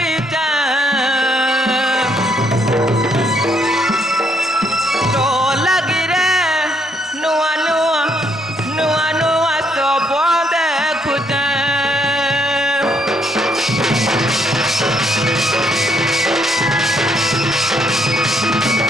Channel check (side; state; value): both; normal; correlation 0.71